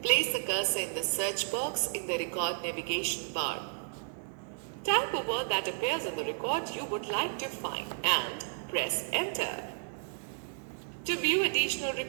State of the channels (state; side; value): silent; left; 56 dB below the other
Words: Place the cursor in the search box in the Record navigation bar. Type a word that appears in the record you would like to find and press Enter. To view additional